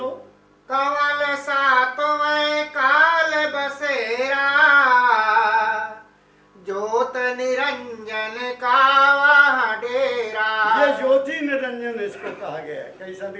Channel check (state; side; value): identical; both; correlation 1.00